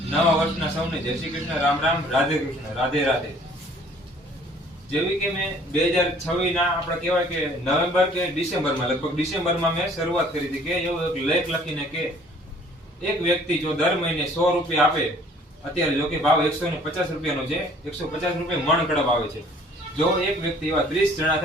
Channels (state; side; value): normal; both; correlation 0.56